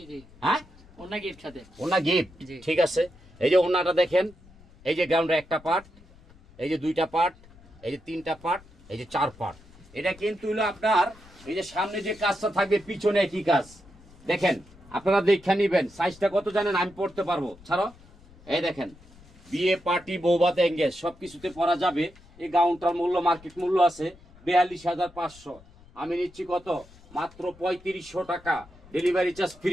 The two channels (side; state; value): left; noise; rumble, 24 dB below the sound